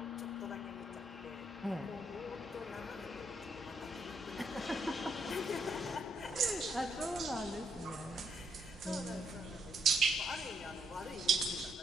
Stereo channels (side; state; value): both; normal; correlation 0.74